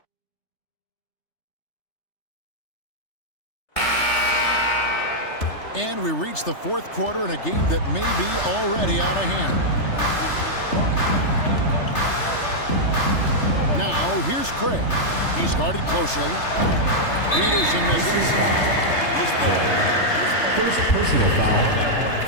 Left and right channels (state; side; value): late; right; 3.3 ms